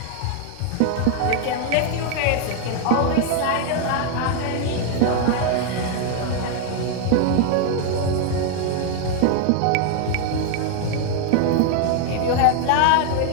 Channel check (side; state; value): both; different; correlation 0.00